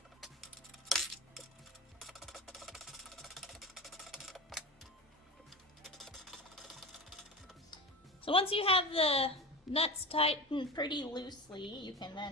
So once you have the nuts tightened pretty loosely, you can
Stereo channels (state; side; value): normal; both; correlation 0.28